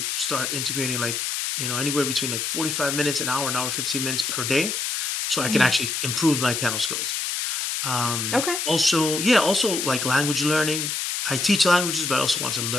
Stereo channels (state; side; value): noise; left; hiss, 1 dB below the sound